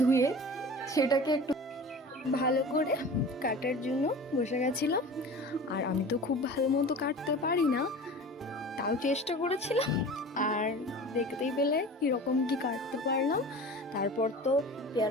সেটাকে একটু ভালো করে কাটার জন্য বসে গেছিলাম। আর আমি তো খুব ভালো মতো কাটতে পারি না, তাও চেষ্টা করেছিলাম। আর দেখতেই পেলে কীরকম কি কাটতে পারলাম। তারপর তো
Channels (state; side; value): normal; both; correlation 0.37